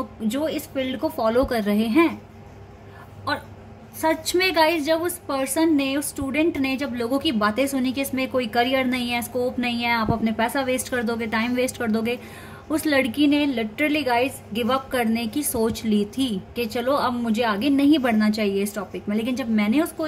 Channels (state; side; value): identical; both; correlation 1.00